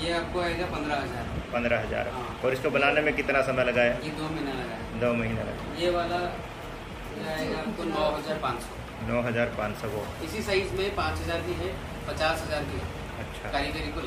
आपको आएगा 15,000। 15,000। हाँ। और इसको बनाने में कितना समय लगा है? ये 2 महीना लगा है। 2 महीना लगा। ये वाला आएगा आपको 9,500। 9,500 वो इसी साइज में 5,000 की है, 50,000 की है। अच्छा, कारीगरी को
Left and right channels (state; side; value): identical; both; correlation 1.00